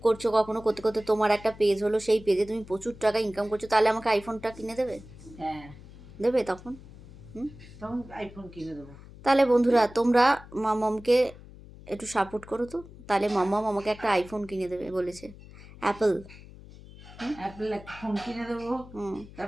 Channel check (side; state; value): left; noise; hum, 18 dB below the sound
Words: করছো, কখনো করতে করতে তোমার একটা পেজ হলো, সেই পেজে তুমি প্রচুর টাকা ইনকাম করছো, তাহলে আমাকে আইফোনটা কিনে দেবে? হ্যাঁ, দেবে তখন? তখন আইফোন কিনে দেবো। তাহলে বন্ধুরা তোমরা মামামকে একটু সাপোর্ট করো তো, তাহলে মামাম আমাকে একটা আইফোন কিনে দেবে বলেছে, অ্যাপল। অ্যাপেল একটা ফোন কিনে দেবো,